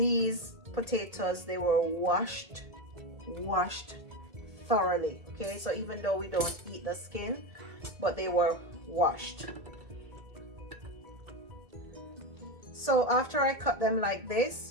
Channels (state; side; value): late; left; 1.8 ms